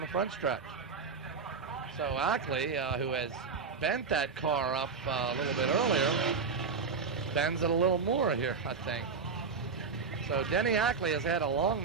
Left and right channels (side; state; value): left; quieter; 5.1 dB